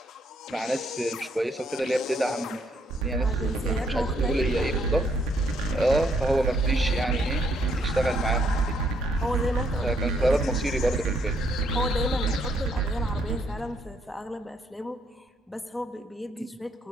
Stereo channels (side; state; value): both; normal; correlation 0.72